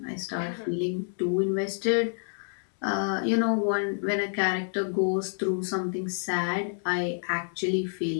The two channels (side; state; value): right; silent; 59 dB below the other